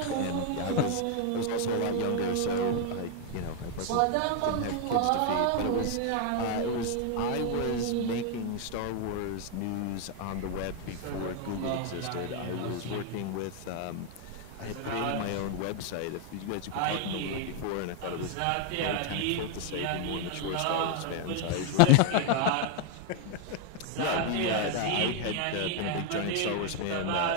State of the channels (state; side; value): different; both; correlation 0.01